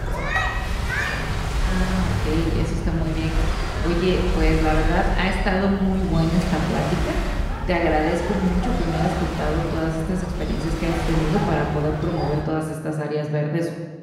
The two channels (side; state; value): both; identical; correlation 1.00